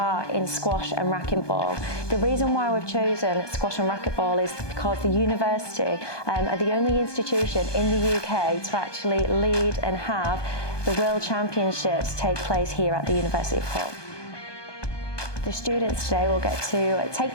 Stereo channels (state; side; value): late; right; 1.2 ms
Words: in squash and racquetball. The reason why we've chosen squash and racquetball is because the university are the only institution in the UK to actually lead and have the World Championships take place here at the University of Hull. The students today will get to